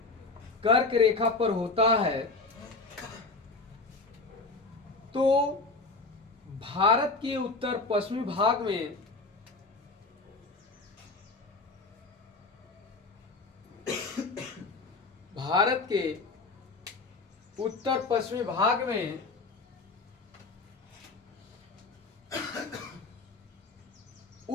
कर्क रेखा पर होता है तो भारत के उत्तर पश्चिमी भाग में भारत के उत्तर पश्चिमी भाग में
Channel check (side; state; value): right; quieter; 3.7 dB